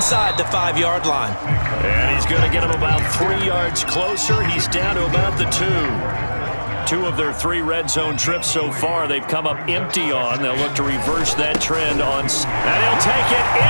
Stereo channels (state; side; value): inverted; both; correlation -1.00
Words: the 5-yard line. And he's going to get him about 3 yards closer. He's down to about the 2. 2 of their 3 red zone trips so far, they've come up empty on. They'll look to reverse that trend on. And he'll take it